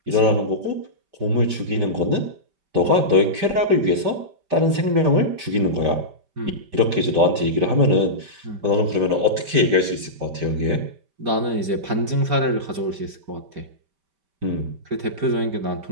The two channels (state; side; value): late; left; 5.1 ms